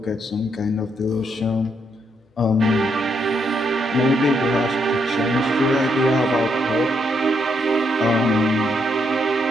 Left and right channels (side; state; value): both; normal; correlation 0.76